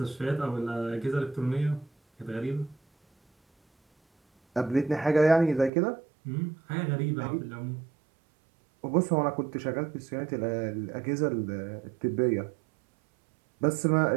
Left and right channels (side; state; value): left; drops out; at 5.7 s